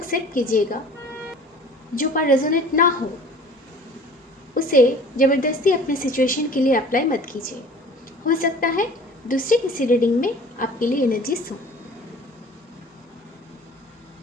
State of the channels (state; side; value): normal; both; correlation 0.46